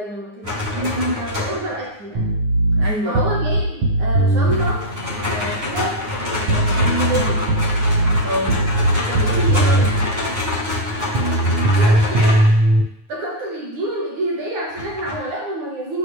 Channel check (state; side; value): late; left; 9.4 ms